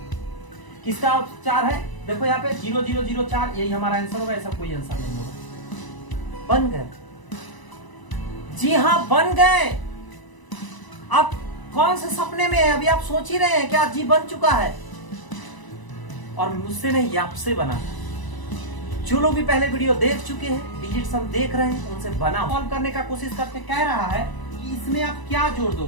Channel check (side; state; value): right; late; 1.0 ms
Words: किसका 4 है? देखो यहाँ पे 0 0 0 4, यही हमारा आंसर होगा, ऐसा कोई आंसर नहीं होगा। बन गए, जी हाँ बन गए। आप कौन से सपने में है? अभी आप सोच ही रहे हैं क्या जी बन चुका है? और मुझसे नहीं, आपसे बना। जो लोग भी पहले वीडियो देख चुके हैं, डिजिट सम देख रहे हैं, उनसे बना सॉल्व करने का कोशिश करते। कह रहा है कि इसमें आप क्या जोड़